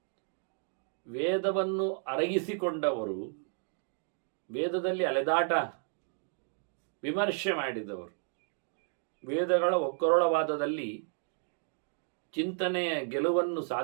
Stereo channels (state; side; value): silent; left; 56 dB below the other